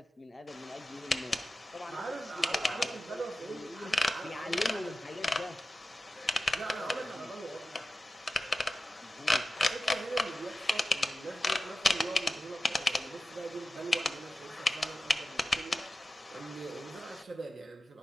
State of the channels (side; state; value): both; normal; correlation 0.94